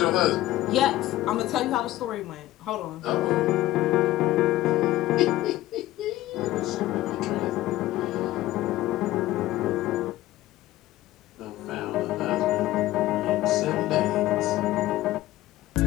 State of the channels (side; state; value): right; quieter; 15.7 dB